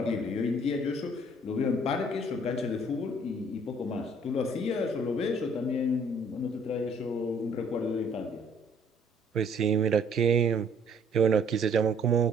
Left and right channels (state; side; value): normal; both; correlation 0.60